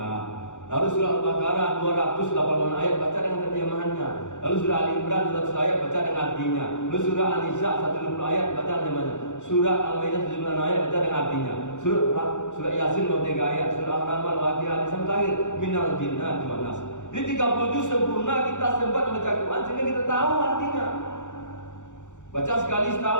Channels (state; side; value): late; right; 0.85 ms